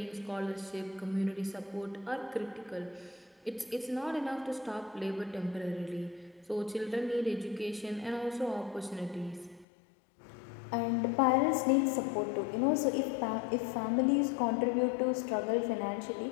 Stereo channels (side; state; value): right; drops out; at 9.7 s